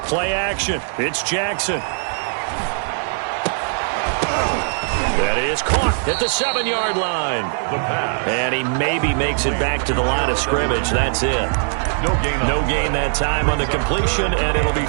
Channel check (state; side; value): silent; left; digital silence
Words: Play action. It's Jackson. That is caught at the 7-yard line. And he maybe makes it back to the line of scrimmage. That's it. No gain that time on the completion, and it'll be